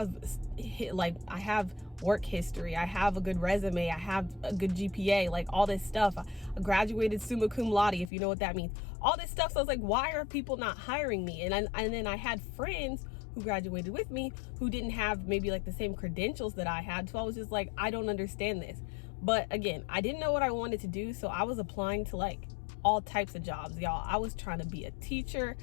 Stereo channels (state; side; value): drops out; right; at 8.1 s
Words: work history, I have a good resume, I have a good GPA, like all this stuff. I graduated summa cum laude, if you know what that means. All this stuff. So I was like, why are people not hiring me? And then I had friends who graduated with me who didn't have maybe like the same credentials that I had. So I was just like, I don't understand this. But again, I didn't know what I wanted to do, so I was applying to like all types of jobs, y'all. I was trying to be a teacher,